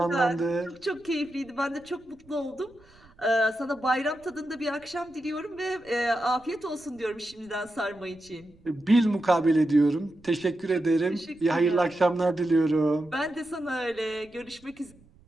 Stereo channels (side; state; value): right; noise; rumble, 28 dB below the sound